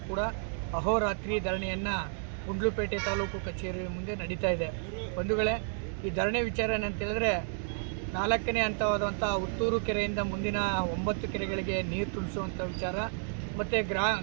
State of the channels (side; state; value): left; silent; digital silence